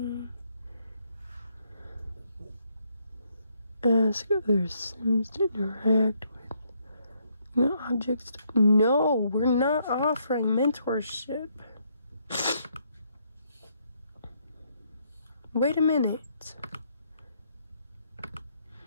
Ask other Sims to interact with objects. No, we're not offering mentorship. Wait a minute.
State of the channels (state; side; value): inverted; both; correlation -0.73